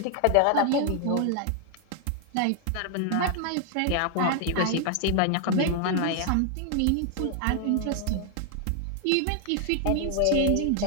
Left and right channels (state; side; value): different; both; correlation 0.00